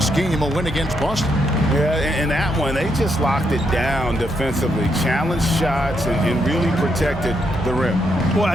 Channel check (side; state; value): both; normal; correlation 0.78